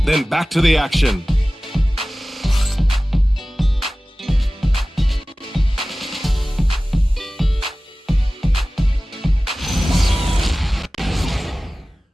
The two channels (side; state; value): both; normal; correlation 0.97